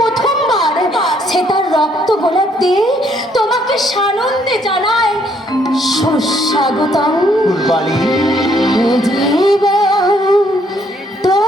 সে তার রক্ত গোলাপ দিয়ে তোমাকে সানন্দে জানায় সুস্বাগতম। ফুলবাড়ি, জীবন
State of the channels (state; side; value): normal; both; correlation 0.68